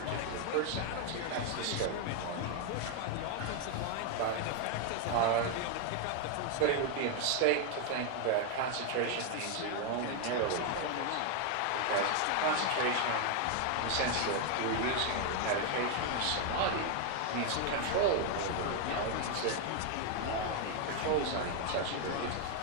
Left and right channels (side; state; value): both; different; correlation 0.01